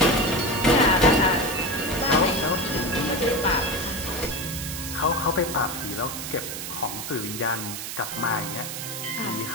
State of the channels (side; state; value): right; noise; hiss, 7 dB below the sound